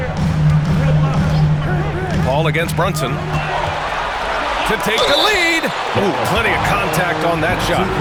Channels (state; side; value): identical; both; correlation 1.00